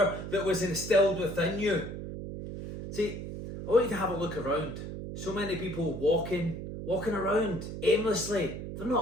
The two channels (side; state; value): right; noise; hum, 8 dB below the sound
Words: that was instilled within you. See, I want you to have a look around. So many people walking around aimlessly. They're